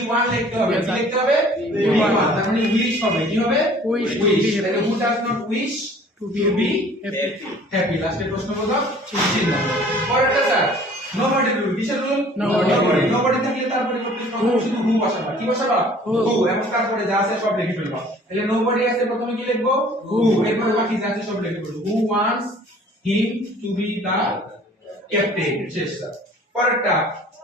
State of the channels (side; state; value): both; normal; correlation 0.51